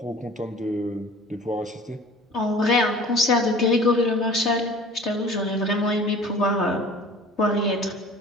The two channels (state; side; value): normal; both; correlation 0.44